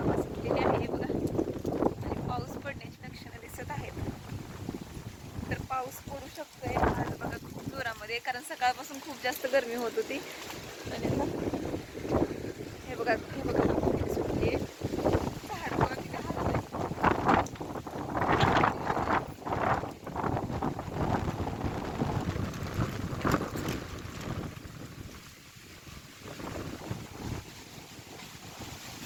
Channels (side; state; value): both; identical; correlation 1.00